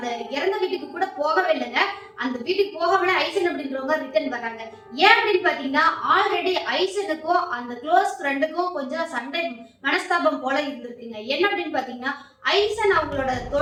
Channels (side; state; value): both; identical; correlation 1.00